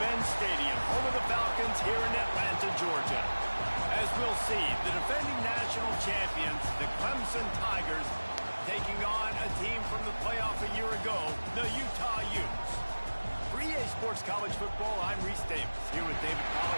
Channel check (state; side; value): inverted; both; correlation -1.00